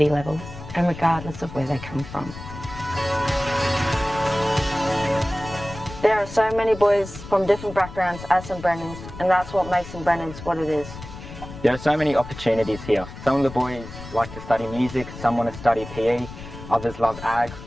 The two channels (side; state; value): left; noise; rumble, 13 dB below the sound